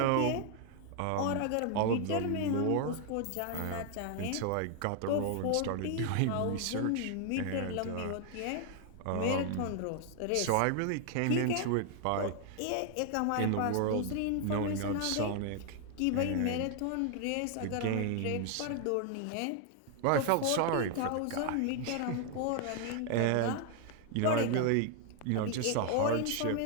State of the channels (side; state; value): both; different; correlation 0.00